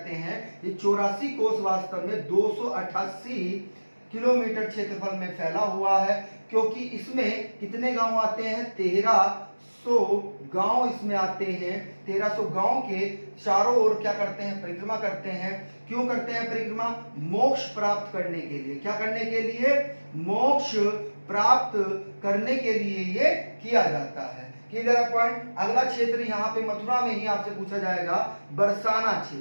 हैं। ये 84 कोस वास्तव में 288 किलोमीटर क्षेत्रफल में फैला हुआ है, क्योंकि इसमें कितने गांव आते हैं? 1300 गांव इसमें आते हैं। 1300 गांव के चारों ओर क्या करते हैं? परिक्रमा करते हैं। क्यों करते हैं परिक्रमा? मोक्ष प्राप्त करने के लिए। क्या करने के लिए? मोक्ष प्राप्त करने के लिए ये किया जाता है। Clear point? अगला क्षेत्र यहाँ पे मथुरा में ही आपसे पूछा जाएगा, बरसाना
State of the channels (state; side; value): inverted; both; correlation -1.00